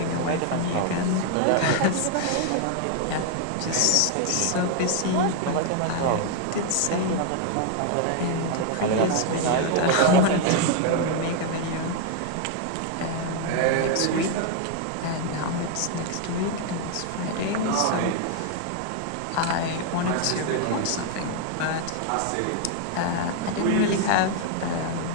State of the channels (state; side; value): different; both; correlation 0.00